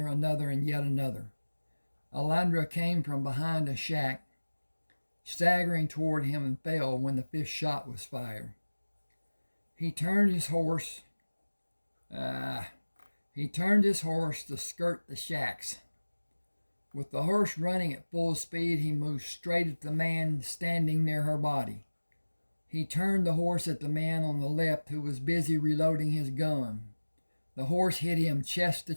and yet another. Alandra came from behind a shack, staggering toward him, and fell when the 5th shot was fired. He turned his horse to skirt the shacks. With the horse running at full speed, he moved straight at the man standing near her body. He turned the horse at the man on the left who was busy reloading his gun. The horse hit him chest to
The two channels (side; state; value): both; inverted; correlation -1.00